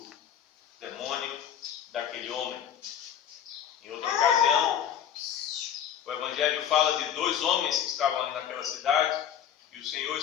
demônio daquele homem. Em outra ocasião, o Evangelho fala de dois homens que estavam ali naquela cidade e o Senhor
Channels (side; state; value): right; quieter; 9.3 dB